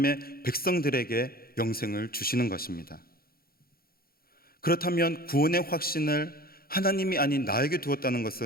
백성들에게 영생을 주시는 것입니다. 그렇다면 구원의 확신을 하나님이 아닌 나에게 두었다는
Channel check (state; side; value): late; right; 0.44 ms